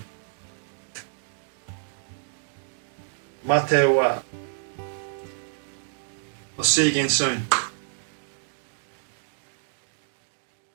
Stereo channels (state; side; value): silent; left; digital silence